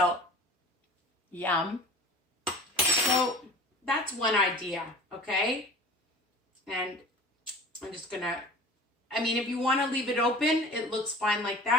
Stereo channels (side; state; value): both; normal; correlation 0.40